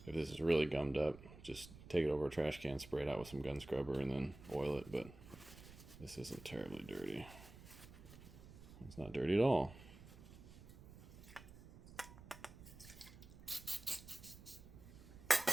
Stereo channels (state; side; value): noise; right; rumble, 17 dB below the sound